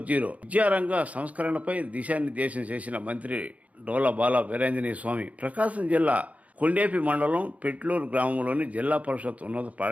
విద్యారంగ సంస్కరణపై దిశానిర్దేశం చేసిన మంత్రి డోలా బాల వీరాంజనేయ స్వామి ప్రకాశం జిల్లా కొండేపి మండలం పెట్లూరు గ్రామంలోని జిల్లా పరిషత్ ఉన్నత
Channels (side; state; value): left; late; 0.069 ms